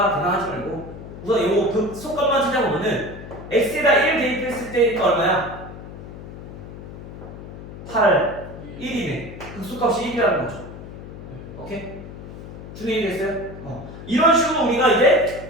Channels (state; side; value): noise; left; hum, 13 dB below the sound